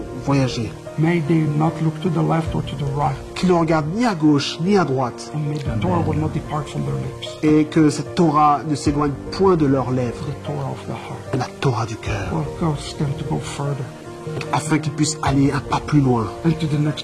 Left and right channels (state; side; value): identical; both; correlation 1.00